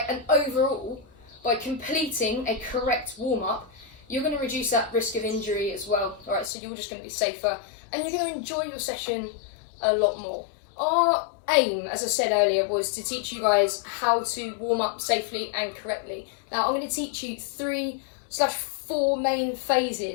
and overall, by completing a correct warm-up, you're going to reduce that risk of injury as well. Alright, so you're just going to be safer and you're going to enjoy your session a lot more. Our aim, as I said earlier, was to teach you guys how to warm up safely and correctly. Now I'm going to teach you 3/4 main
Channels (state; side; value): drops out; right; at 6.5 s